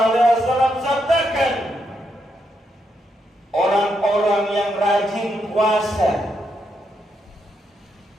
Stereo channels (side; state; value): both; normal; correlation 0.80